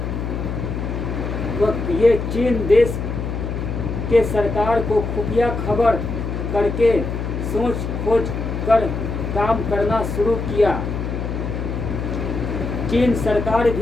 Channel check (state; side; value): noise; left; hum, 3 dB below the sound